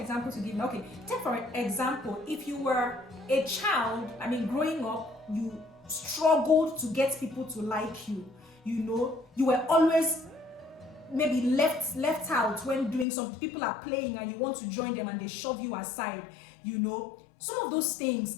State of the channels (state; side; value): drops out; right; at 13.1 s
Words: to give. Okay, take for example, if you were a child, growing up, you struggled to get people to like you. You were always maybe left out when doing something. People are playing and you want to join them and they shove you aside. Some of those things